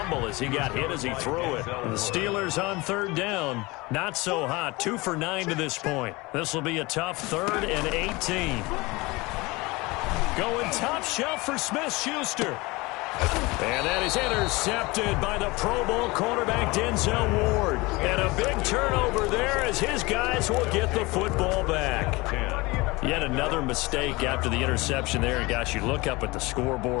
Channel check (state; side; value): quieter; right; 23.3 dB